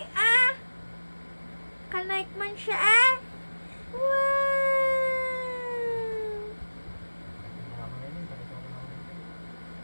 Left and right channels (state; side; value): inverted; both; correlation -1.00